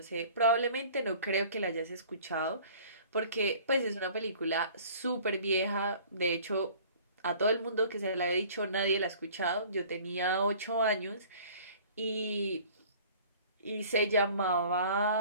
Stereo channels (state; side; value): inverted; both; correlation -0.49